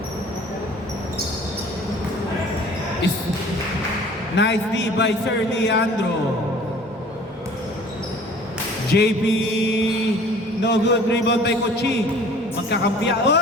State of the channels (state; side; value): normal; both; correlation 0.49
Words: Nice D by Sir Leandro. JP, no good, rebound by Kochi. Magkakampiya,